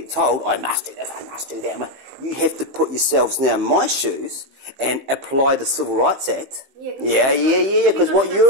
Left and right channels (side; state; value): left; late; 15 ms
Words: told, I must do this, I must do that. You have to put yourselves now in my shoes and apply the Civil Rights Act. Yeah, because what